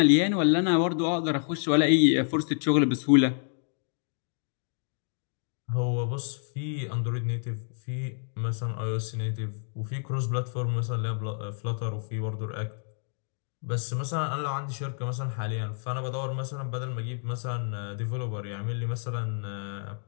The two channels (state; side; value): silent; right; digital silence